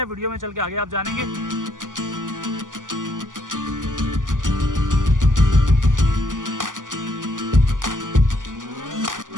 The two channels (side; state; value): left; late; 0.88 ms